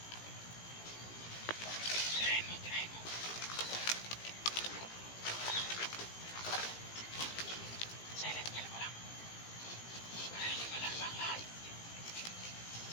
Tirahin mo, tirahin mo. Silent kill mo lang. Para hindi malamba ang lahat.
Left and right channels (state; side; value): late; right; 17 ms